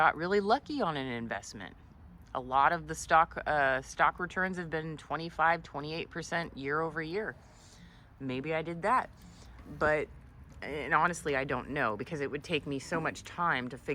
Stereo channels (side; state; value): both; identical; correlation 1.00